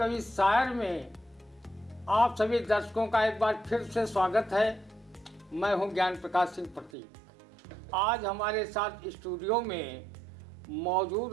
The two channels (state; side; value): drops out; left; at 6.9 s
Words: शायर में आप सभी दर्शकों का एक बार फिर से स्वागत है। मैं हूं ज्ञान प्रकाश सिंह प्रतीक। आज हमारे साथ स्टूडियो में